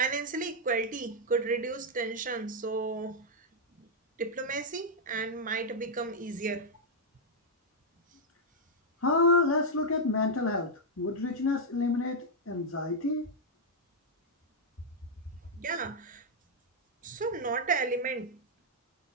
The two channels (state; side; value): normal; both; correlation -0.03